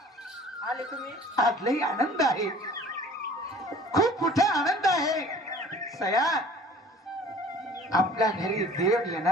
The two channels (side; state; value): both; normal; correlation 0.48